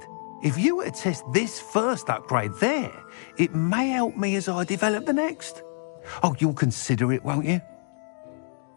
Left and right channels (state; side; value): silent; right; 61 dB below the other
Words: If you were to test this first upgrade there, it may help me as I develop the next. Oh, you'll consider it, won't you?